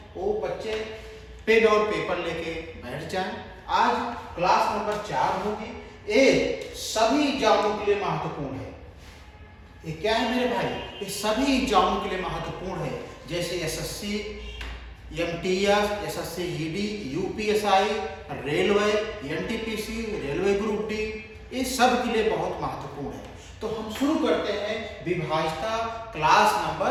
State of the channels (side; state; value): both; identical; correlation 1.00